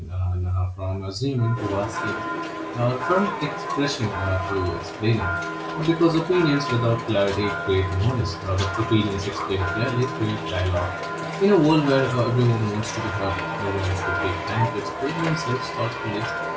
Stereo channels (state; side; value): identical; both; correlation 1.00